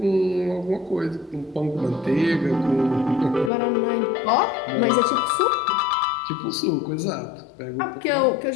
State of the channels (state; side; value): drops out; right; at 3.5 s